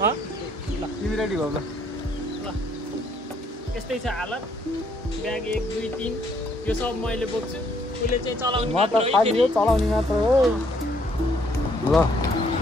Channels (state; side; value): normal; both; correlation 0.68